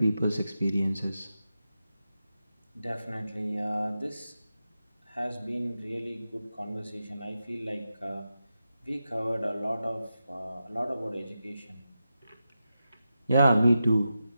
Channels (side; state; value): both; inverted; correlation -0.90